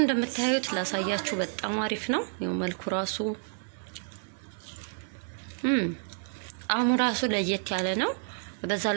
እንደምታዩት ላሳያችሁ በጣም አሪፍ ነው ይሄው መልኩ ራሱ አሁን ራሱ ለየት ያለ ነው በዛ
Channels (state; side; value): silent; left; 58 dB below the other